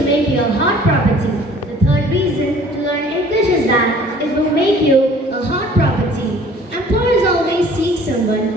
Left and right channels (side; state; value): both; normal; correlation 0.52